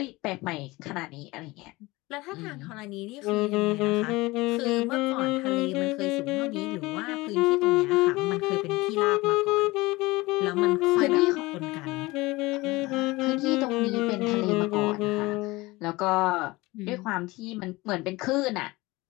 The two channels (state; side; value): quieter; right; 21.4 dB